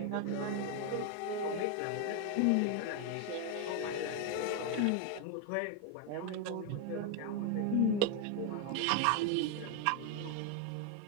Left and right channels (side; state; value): both; different; correlation 0.00